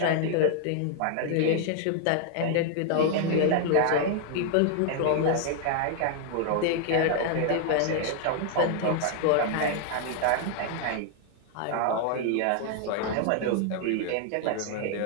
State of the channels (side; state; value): both; different; correlation 0.00